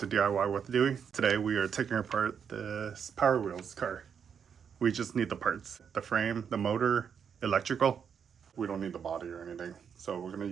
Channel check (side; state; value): left; quieter; 7.3 dB